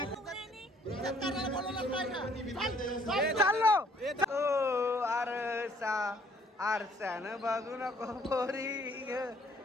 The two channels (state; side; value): normal; both; correlation 0.62